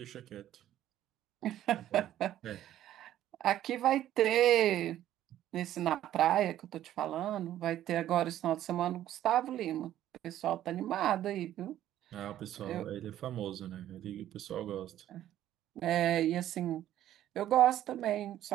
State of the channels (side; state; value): left; quieter; 12.4 dB